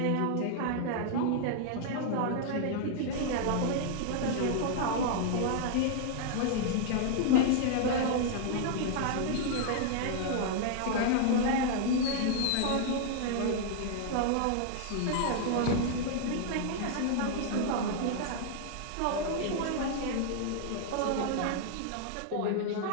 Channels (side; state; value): both; different; correlation -0.01